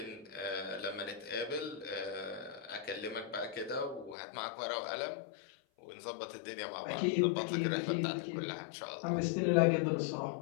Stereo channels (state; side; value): drops out; right; at 4.2 s